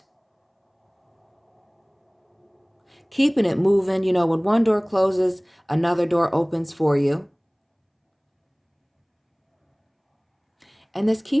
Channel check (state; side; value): identical; both; correlation 1.00